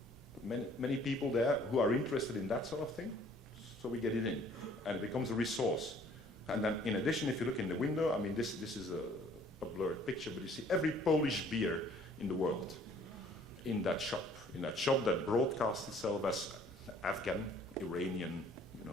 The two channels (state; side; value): normal; both; correlation 0.57